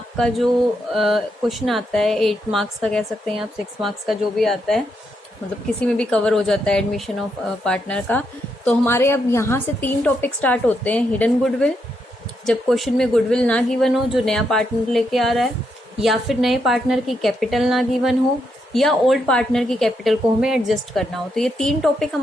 जो क्वेश्चन आता है 8 मार्क्स का कह सकते हैं आप, 6 मार्क्स का जो भी आता है, मतलब किसी में भी कवर हो जाता है एडमिशन ऑफ पार्टनर का। तो हमारे अब यहाँ से 3 टॉपिक स्टार्ट होते हैं। हिडन गुडविल, जब क्वेश्चन में गुडविल ना गिवन हो जो नया पार्टनर लेके आ रहा है, या फिर नए पार्टनर की कैपिटल ना गिवन हो, या ओल्ड पार्टनर की कैपिटल को हमें एडजस्ट करना हो। तो ये 3 टॉपिक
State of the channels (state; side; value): normal; both; correlation 0.80